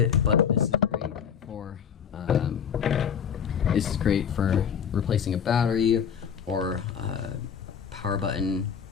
but this is great for replacing a battery or power button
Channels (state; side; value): quieter; right; 7.6 dB